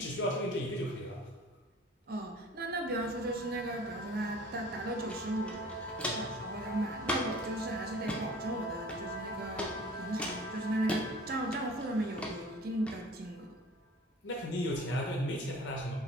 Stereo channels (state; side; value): normal; both; correlation 0.45